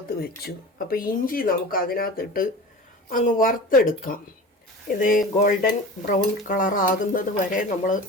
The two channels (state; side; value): normal; both; correlation 0.35